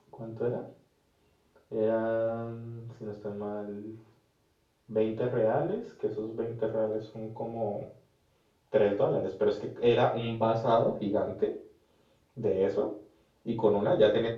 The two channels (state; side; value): identical; both; correlation 1.00